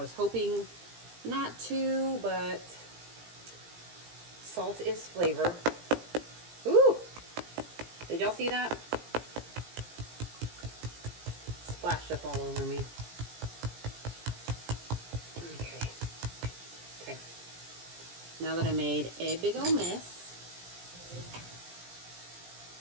hoping not to, but salt is flavor. Ooh! Did y'all see that? Splashed up all over me. Okay. Now that I made a big old mess,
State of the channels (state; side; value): late; left; 17 ms